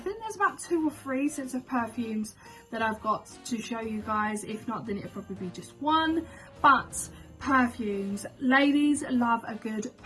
think there's about 2 or 3 sets of perfumes that I've got to show you guys. If not, then it'll probably be just one. But perfumes, ladies love a good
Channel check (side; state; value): both; identical; correlation 1.00